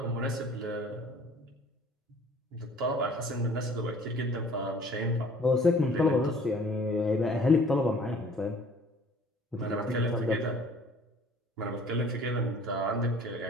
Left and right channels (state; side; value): normal; both; correlation 0.52